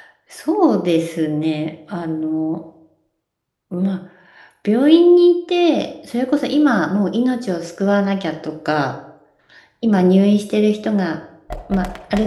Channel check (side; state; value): both; identical; correlation 1.00